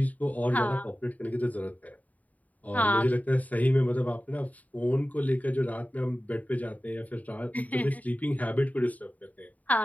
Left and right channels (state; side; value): late; right; 0.073 ms